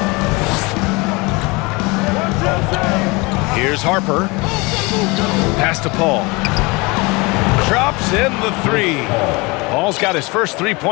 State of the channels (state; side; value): quieter; right; 25.9 dB